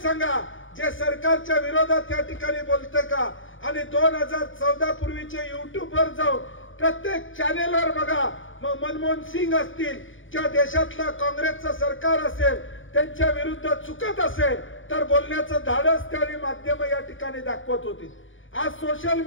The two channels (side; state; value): right; late; 0.57 ms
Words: सांगा जे सरकारच्या विरोधात या ठिकाणी बोलते का. आणि 2014 पूर्वीचे युट्यूबवर जाऊन प्रत्येक चॅनेलवर बघा, मग मनमोहन सिंग असतील किंवा देशातलं काँग्रेसचं सरकार असेल त्यांच्या विरुद्ध चुकत असेल तर बोलण्याचं धाडस त्यावेळी माध्यम या ठिकाणी दाखवत होती. आज सोशल